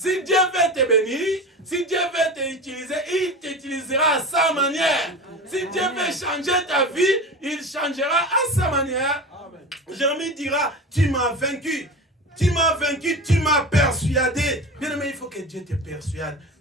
Dieu veut te bénir, si Dieu veut t'utiliser, il t'utilisera à sa manière. Si Dieu veut changer ta vie, il changera à sa manière. Jérémie dira, tu m'as vaincu. Tu m'as vaincu, tu m'as persuadé. Bien aimé, il faut que Dieu te persuade.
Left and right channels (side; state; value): both; normal; correlation 0.30